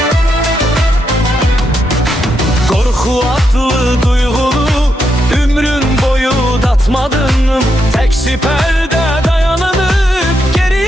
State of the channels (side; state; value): both; normal; correlation 0.82